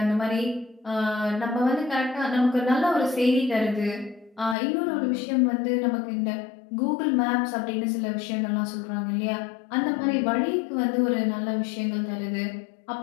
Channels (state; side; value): drops out; right; at 4.5 s